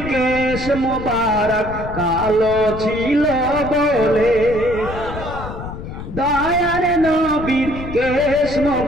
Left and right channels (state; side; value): noise; left; rumble, 10 dB below the sound